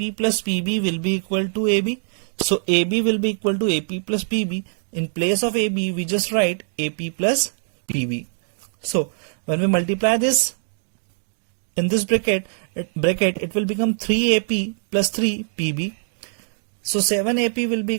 plus PB will be equal to AB. So AB will be equal to AP plus PB. In place of AB, we just write AP plus PB. So when we multiply this in this bracket it will become 3AP plus 3PB. So 7AP will be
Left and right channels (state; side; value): silent; left; digital silence